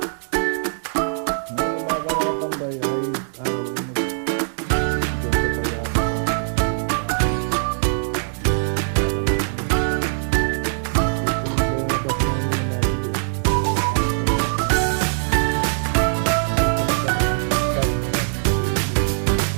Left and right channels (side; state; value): left; silent; 64 dB below the other